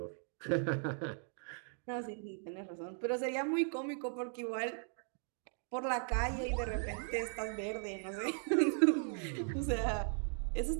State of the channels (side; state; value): left; silent; 52 dB below the other